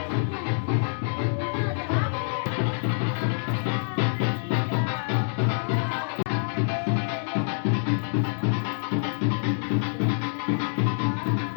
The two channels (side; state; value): right; silent; digital silence